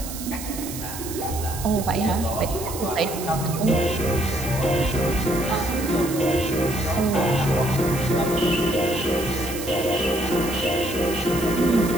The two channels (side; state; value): right; noise; hiss, 10 dB below the sound